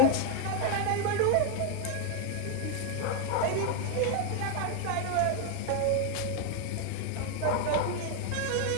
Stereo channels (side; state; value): both; different; correlation 0.00